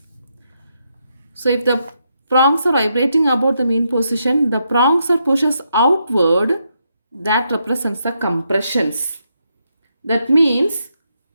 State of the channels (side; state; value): both; inverted; correlation -0.80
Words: So if the prongs are vibrating about the mean position, the prongs are pushes outward, that represents the compressions. That means